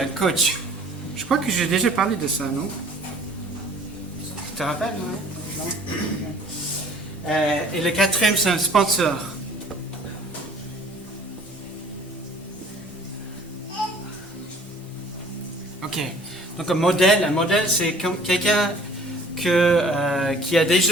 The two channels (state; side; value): normal; both; correlation 0.52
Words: coach. Je crois que j'ai déjà parlé de ça, non? Tu te rappelles, non? Et le quatrième, c'est un sponsor. Ok. Donc un modèle, c'est comme quelqu'un qui a